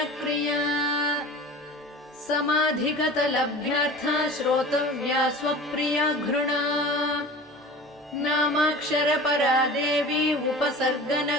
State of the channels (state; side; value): normal; both; correlation 0.37